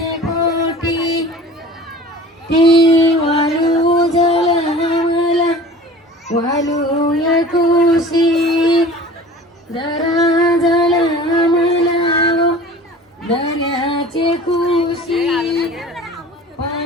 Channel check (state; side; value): normal; both; correlation 0.42